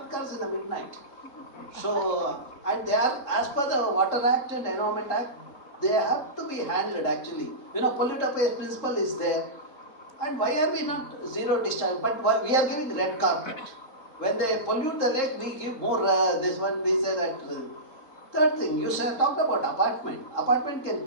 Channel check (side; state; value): right; late; 3.7 ms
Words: in the midnight. So, and they are, as per the Water Act and Environment Act, They have to be handled actually. You know, polluter pays principle is there. And why are we not zero discharge? But we are giving red carpet. When they pollute the lake, we give more, this one, we say that. Third thing, you talked about apartment. Apartment can